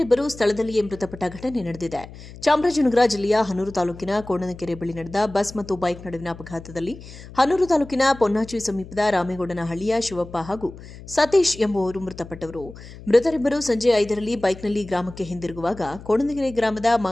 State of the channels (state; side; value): noise; left; hum, 16 dB below the sound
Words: ಸ್ಥಳದಲ್ಲಿಯೇ ಮೃತಪಟ್ಟ ಘಟನೆ ನಡೆದಿದೆ. ಚಾಮರಾಜನಗರ ಜಿಲ್ಲೆಯ ಹನೂರು ತಾಲೂಕಿನ ಕೋಣನಕೆರೆ ಬಳಿ ನಡೆದ ಬಸ್ ಮತ್ತು ಬೈಕ್ ನಡುವಿನ ಅಪಘಾತದಲ್ಲಿ ಹನೂರು ತಾಲೂಕಿನ ಪೊನ್ನಾಚಿ ಸಮೀಪದ ರಾಮೇಗೌಡನಹಳ್ಳಿಯ ಶಿವಪ್ಪ ಹಾಗೂ ಸತೀಶ್ ಎಂಬುವವರು ಮೃತಪಟ್ಟವರು. ಮೃತರಿಬ್ಬರು ಸಂಜೆ 5ರಲ್ಲಿ ಬೈಕ್ನಲ್ಲಿ ಗ್ರಾಮಕ್ಕೆ ಹಿಂದಿರುಗುವಾಗ ಕೋಣನಕೆರೆ ಗ್ರಾಮದ